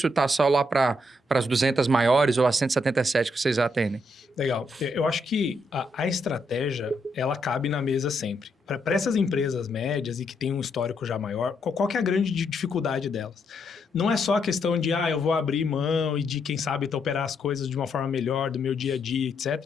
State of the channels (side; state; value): both; normal; correlation 0.77